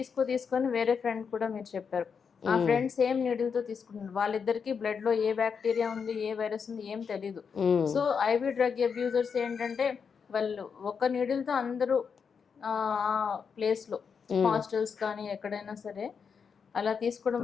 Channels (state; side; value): quieter; right; 6.2 dB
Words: తీసుకొని వేరే ఫ్రెండ్ కూడా మీరు చెప్పారు, ఆ ఫ్రెండ్ సేమ్ నీడిల్తో తీసుకున్నారు, వాళ్ళిద్దరికి బ్లడ్లో ఏ బ్యాక్టీరియా ఉంది ఏ వైరస్ ఉంది ఏం తెలీదు. సో ఐవి డ్రగ్ అబ్యూజర్స్ ఏంటంటే వాళ్ళు ఒక నీడిల్తో అందరూ ఆ ప్లేస్లో హాస్టల్స్ కానీ ఎక్కడైనా సరే అలా తీసుకోవడం